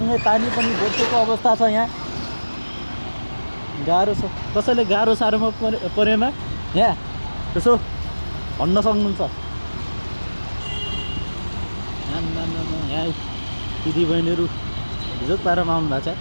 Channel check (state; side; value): inverted; both; correlation -1.00